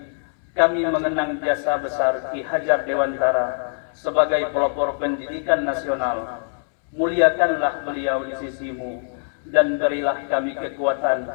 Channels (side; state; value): right; silent; 64 dB below the other